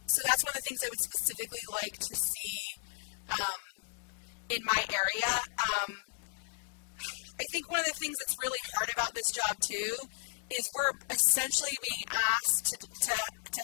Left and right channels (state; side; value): silent; right; digital silence